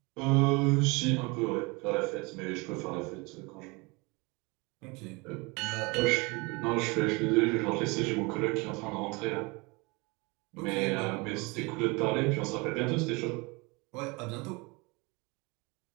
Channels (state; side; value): quieter; left; 27.0 dB